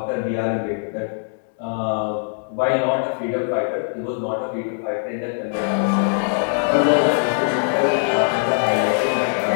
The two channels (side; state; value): right; silent; digital silence